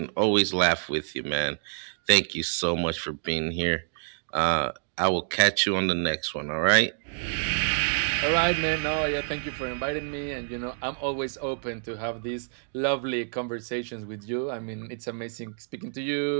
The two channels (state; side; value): silent; left; digital silence